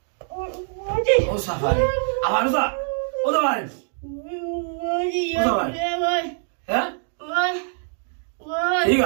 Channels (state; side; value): silent; left; digital silence